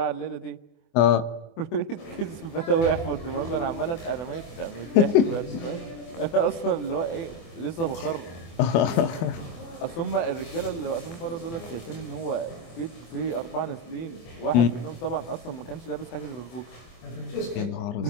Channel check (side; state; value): right; late; 24 ms